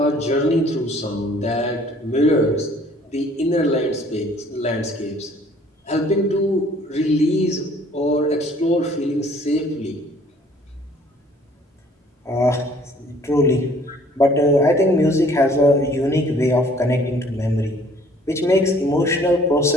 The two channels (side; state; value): both; normal; correlation 0.57